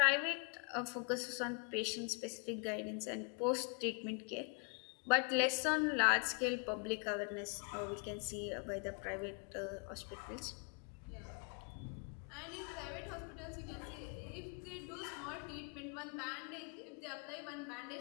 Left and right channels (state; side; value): quieter; right; 37.7 dB